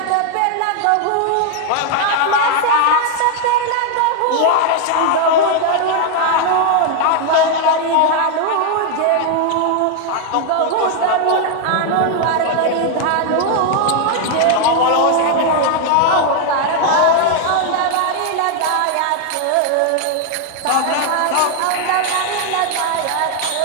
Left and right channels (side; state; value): both; different; correlation 0.00